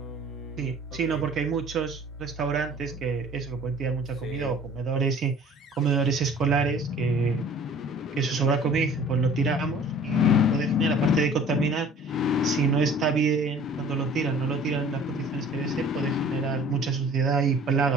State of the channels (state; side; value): normal; both; correlation 0.49